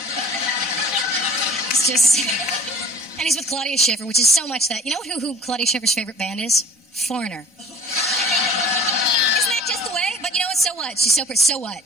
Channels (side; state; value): both; normal; correlation 0.45